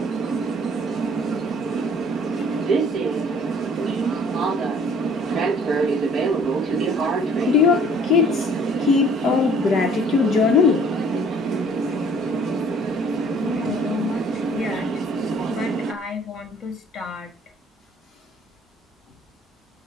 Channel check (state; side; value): normal; both; correlation 0.55